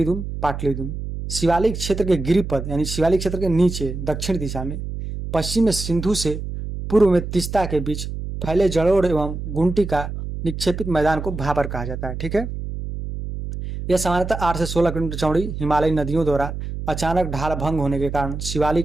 दून, पाटली दून। शिवालिक क्षेत्र के गिरिपद यानी शिवालिक क्षेत्र के नीचे दक्षिण दिशा में, पश्चिम में सिंधु से, पूर्व में तीस्ता के बीच फैले जलोढ़ एवं गुंटी का निक्षेपित मैदान को भाबर कहा जाता है। ठीक है, यह सामान्यतः 8 से 16 किलोमीटर चौड़ी हिमालयी नदियों द्वारा अचानक ढाल भंग होने के कारण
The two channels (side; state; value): right; noise; hum, 6 dB below the sound